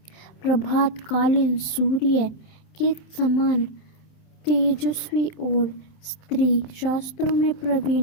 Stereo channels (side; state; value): right; late; 27 ms